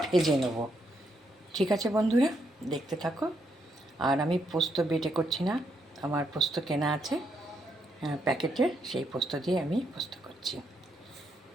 ভেজে নেব। ঠিক আছে বন্ধুরা, দেখতে থাকো। আর আমি পোস্ত বেটে করছি না, আমার পোস্ত কেনা আছে প্যাকেটের, সেই পোস্ত দিয়ে আমি পোস্ত করছি।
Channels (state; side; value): normal; both; correlation 0.77